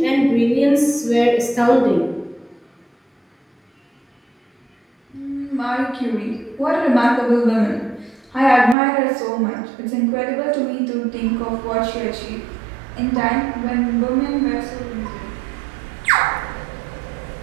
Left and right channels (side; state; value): left; drops out; at 8.8 s